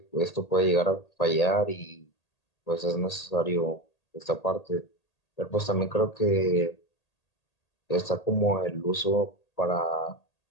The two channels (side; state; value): right; late; 1.8 ms